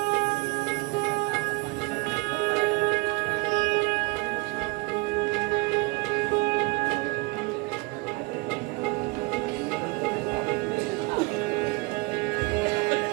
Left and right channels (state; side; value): quieter; left; 24.3 dB